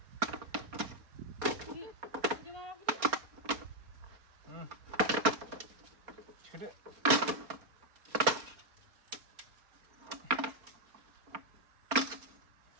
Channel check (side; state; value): left; late; 4.3 ms